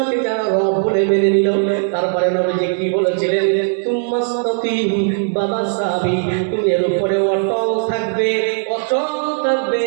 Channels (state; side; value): silent; left; digital silence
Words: যারা রব বলে মেনে নিল। তারপরে নবীজি কি বলেছিলেন? তুম্মাস্তাকিম বাবা সাহাবী তুমি এর উপরে অটল থাকবে, অচল থাকবে,